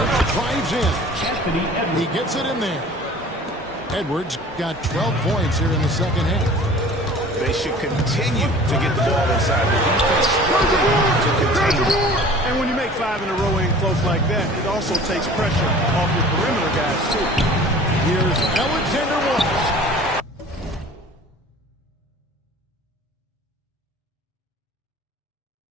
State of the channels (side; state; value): both; normal; correlation 0.45